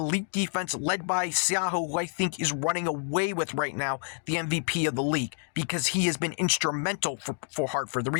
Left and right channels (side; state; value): right; silent; 59 dB below the other